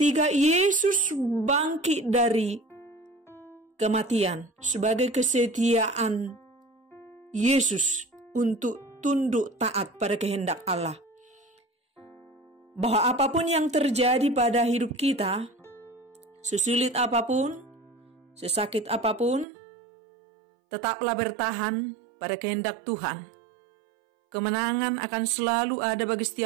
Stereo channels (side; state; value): left; drops out; at 19.5 s